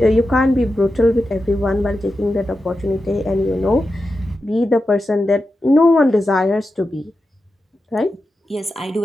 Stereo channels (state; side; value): normal; both; correlation 0.90